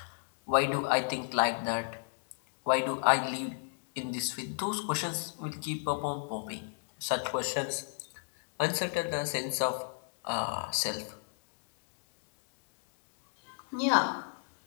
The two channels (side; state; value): right; silent; digital silence